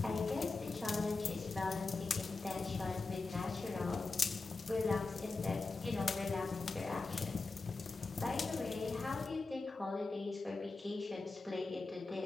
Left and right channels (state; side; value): quieter; right; 3.7 dB